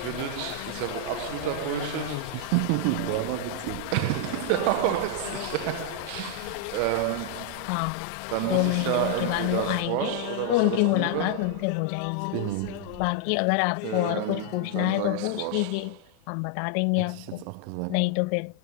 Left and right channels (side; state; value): both; different; correlation 0.00